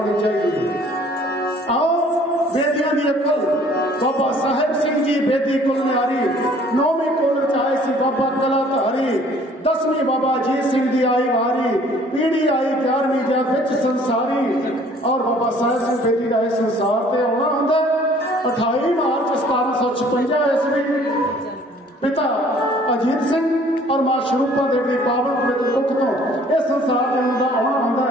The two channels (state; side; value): normal; both; correlation 0.55